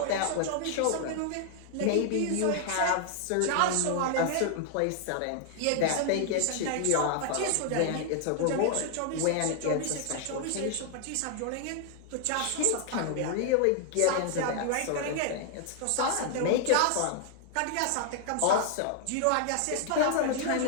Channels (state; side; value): different; both; correlation 0.00